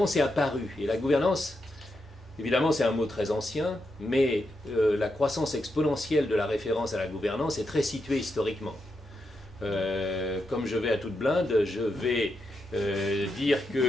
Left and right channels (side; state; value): both; normal; correlation 0.84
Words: c'est apparu. Et la gouvernance, évidemment c'est un mot très ancien, mais la croissance exponentielle de la référence à la gouvernance est très située historiquement. Comme je vais à toute blinde, je vais dire